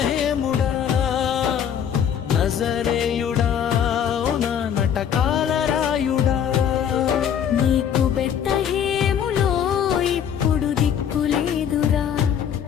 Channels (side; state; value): right; quieter; 8.7 dB